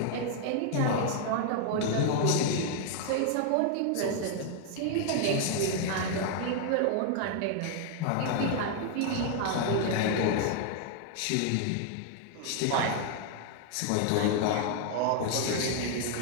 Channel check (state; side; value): different; both; correlation 0.00